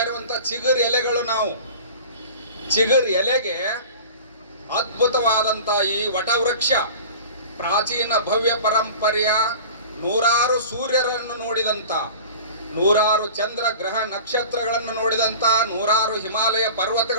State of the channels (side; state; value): both; inverted; correlation -0.39